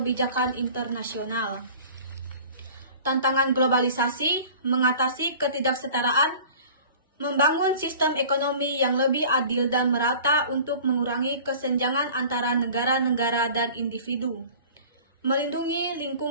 internasional. Tantangan globalisasi, mengatasi ketidaksetaraan, membangun sistem ekonomi yang lebih adil dan merata untuk mengurangi kesenjangan antara negara-negara dan individu, melindungi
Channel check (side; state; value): both; inverted; correlation -0.44